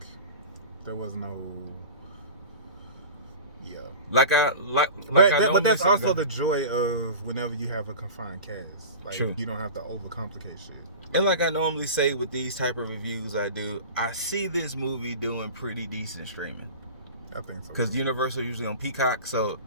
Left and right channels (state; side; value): inverted; both; correlation -0.35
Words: there was no... Yeah. But that's also the joy of whenever you have a confined cast. Like, true. You don't have to overcomplicate shit. And like I normally say with these type of reviews I see this movie doing pretty decent streaming. I think so. Because Universal usually on Peacock, so